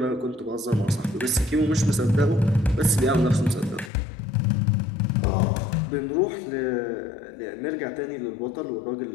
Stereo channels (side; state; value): right; drops out; at 3.9 s